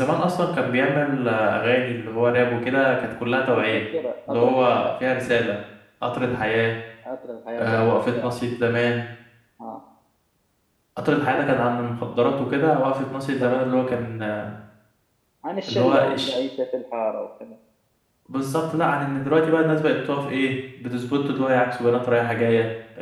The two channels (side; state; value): both; identical; correlation 1.00